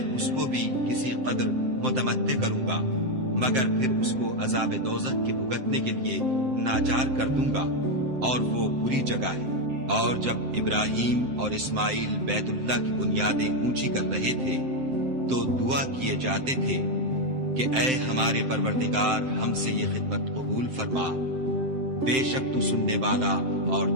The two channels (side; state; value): left; late; 7.7 ms